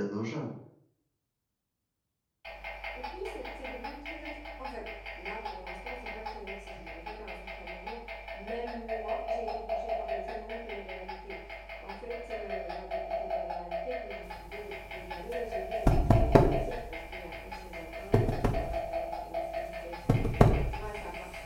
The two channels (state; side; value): identical; both; correlation 1.00